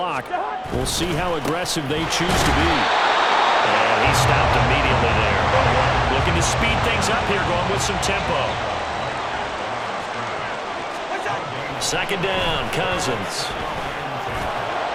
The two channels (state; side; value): identical; both; correlation 1.00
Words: We'll see how aggressive they choose to be. And he stopped immediately there. Looking to speed things up here, going with some tempo. Second down, Cousins.